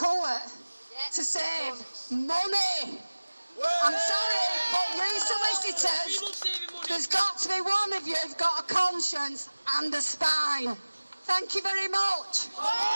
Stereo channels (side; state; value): both; inverted; correlation -1.00